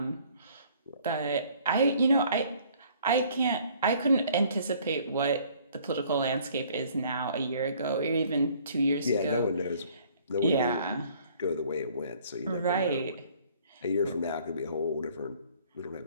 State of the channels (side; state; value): both; inverted; correlation -0.58